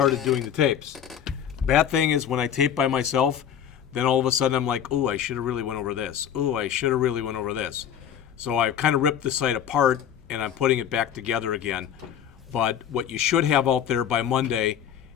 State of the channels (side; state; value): right; quieter; 9.1 dB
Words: doing the tapes. Bad thing is when I tape by myself, then all of a sudden I'm like, ooh, I should have really went over this. Ooh, I should have really went over this. So I've kind of ripped the site apart and I'm putting it back together again. But what you should have out there by Monday,